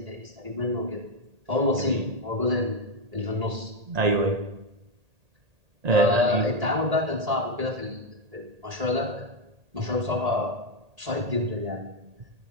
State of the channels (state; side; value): late; left; 1.8 ms